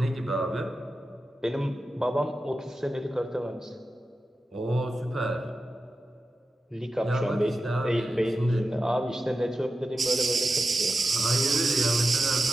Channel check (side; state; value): both; normal; correlation 0.92